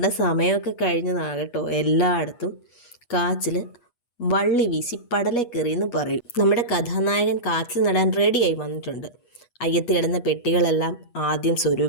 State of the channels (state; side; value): late; right; 8.3 ms